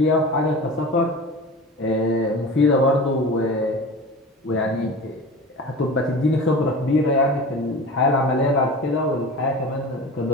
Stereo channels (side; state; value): both; normal; correlation 0.35